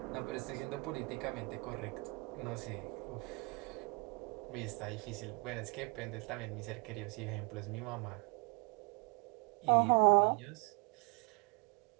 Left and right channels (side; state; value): left; quieter; 31.1 dB